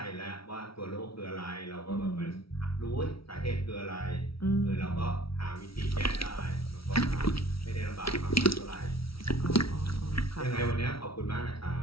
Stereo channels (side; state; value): right; late; 0.75 ms